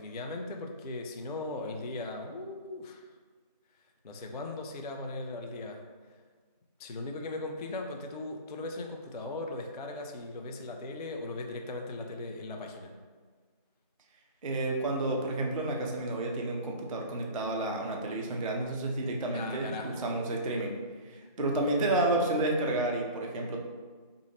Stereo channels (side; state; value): both; inverted; correlation -0.35